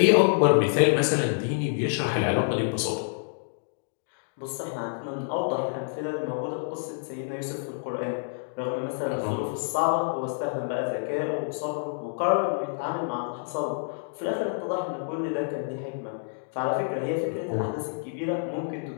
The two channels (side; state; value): right; silent; digital silence